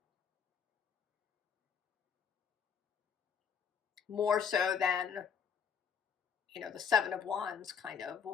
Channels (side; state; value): right; quieter; 7.0 dB